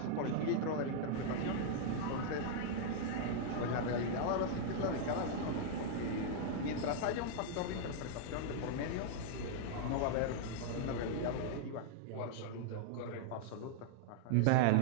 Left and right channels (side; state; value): both; different; correlation -0.01